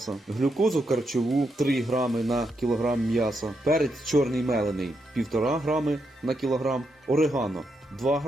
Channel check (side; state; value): both; normal; correlation 0.82